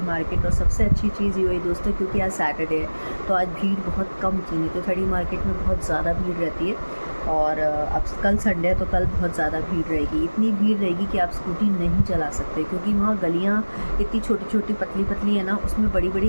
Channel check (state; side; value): inverted; both; correlation -1.00